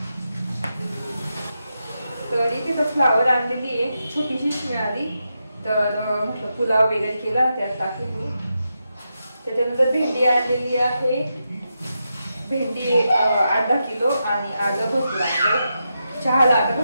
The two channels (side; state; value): both; inverted; correlation -0.86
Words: तर इथे तर फ्लावर आणलेली आहे, छोटीशीच मिळाली. तर म्हटलं पुलाव वगैरे केला त्यात टाकली. त्याच्यानंतर भेंडी आणलेली आहे, भेंडी 8-10 किलो आणि आलं भरपूर आहे. चहाला आता